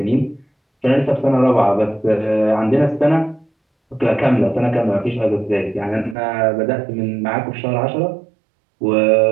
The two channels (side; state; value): left; drops out; at 6.2 s